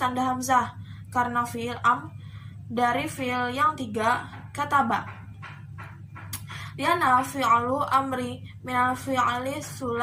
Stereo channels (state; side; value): identical; both; correlation 1.00